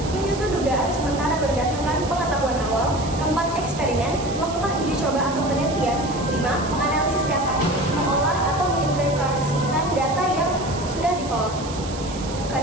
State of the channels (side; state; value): right; noise; hiss, 13 dB below the sound